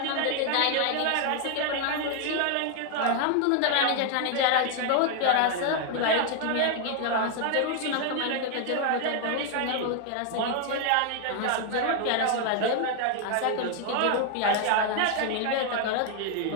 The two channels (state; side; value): different; both; correlation 0.00